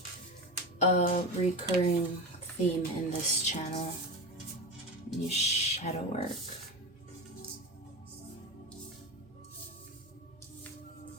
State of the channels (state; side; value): normal; both; correlation 0.23